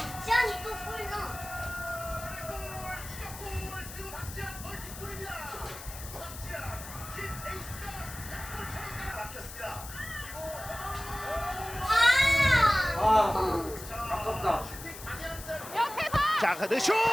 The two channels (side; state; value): left; noise; hiss, 12 dB below the sound